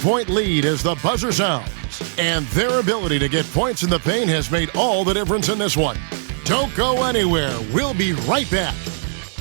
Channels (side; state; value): left; silent; 59 dB below the other